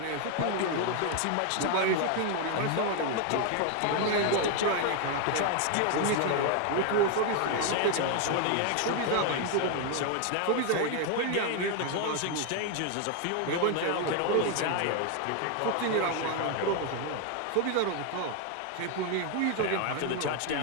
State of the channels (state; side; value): different; both; correlation 0.01